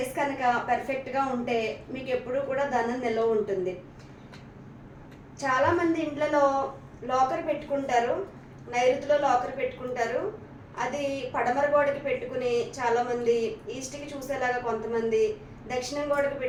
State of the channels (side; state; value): both; identical; correlation 1.00